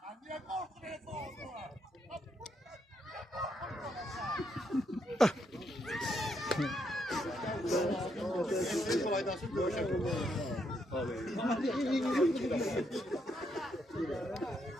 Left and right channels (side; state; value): both; normal; correlation 0.77